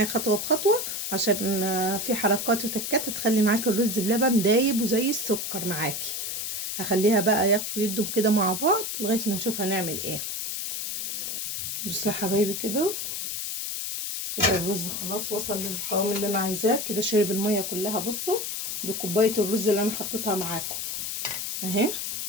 خطوه بخطوه عشان في حركات وتكات هتخلي معاكي الرز بلبن دايب وزي السكر معاكي. هخليها بقى ياخدوا ويدوا كده مع بعض لغايه ما نشوف هنعمل ايه. بصوا يا حبايبي كده الرز خلاص وصل للقوام اللي انا عايزاه كده، شرب الميه كلها. بصوا دي كوبايه الرز اللي انا حطيتها معاكم اهي،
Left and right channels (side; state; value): left; noise; hiss, 3 dB below the sound